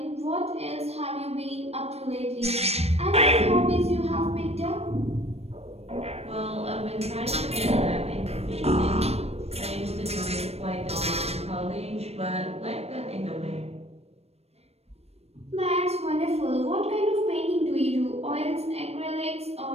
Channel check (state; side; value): late; left; 0.30 ms